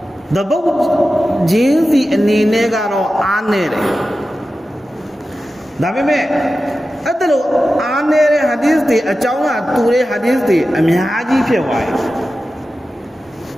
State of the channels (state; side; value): normal; both; correlation 0.93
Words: တပုတ်ဂျင်းစီအနေနဲ့ကတော့အားနေတယ်ဒါပေမဲ့အဲ့ဒါလို့အားနေတဲ့ဟာဒီသ်တွေအကြောင်းကတူတဲ့ဟာဒီသ်တွေအများကြီးဖြစ်သွားတယ်